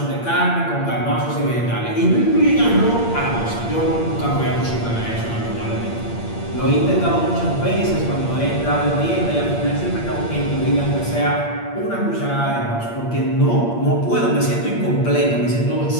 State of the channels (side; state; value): right; late; 8.6 ms